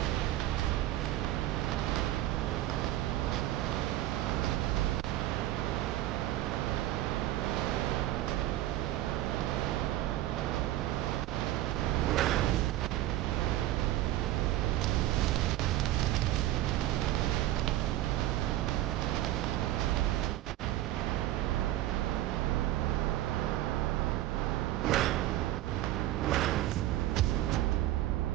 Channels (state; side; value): quieter; left; 14.6 dB